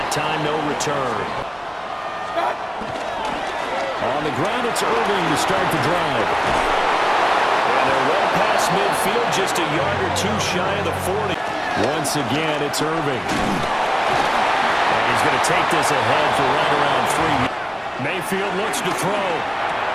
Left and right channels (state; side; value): identical; both; correlation 1.00